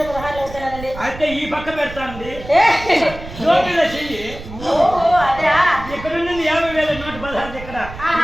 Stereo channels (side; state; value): right; noise; rumble, 13 dB below the sound